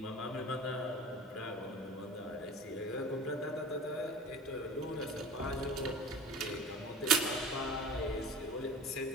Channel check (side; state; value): both; normal; correlation 0.37